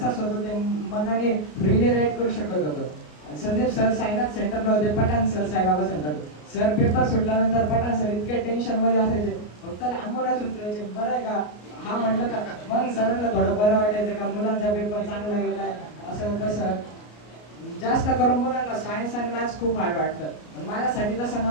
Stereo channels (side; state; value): right; late; 33 ms